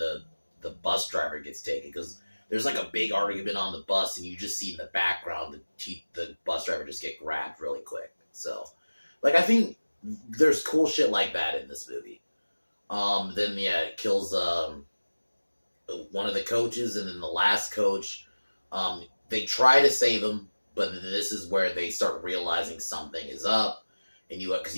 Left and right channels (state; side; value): inverted; both; correlation -1.00